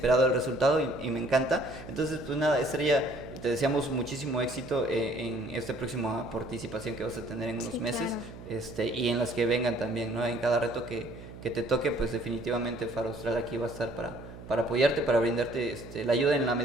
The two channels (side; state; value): right; noise; hum, 15 dB below the sound